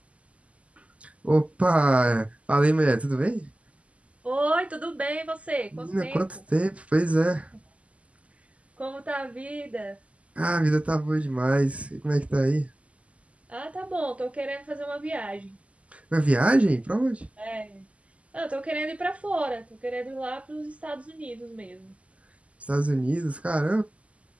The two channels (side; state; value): left; late; 0.065 ms